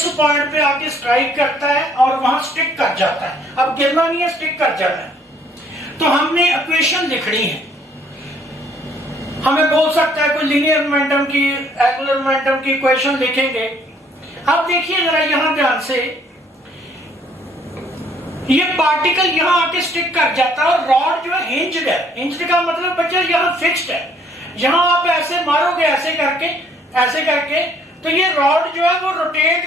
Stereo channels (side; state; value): both; normal; correlation 0.63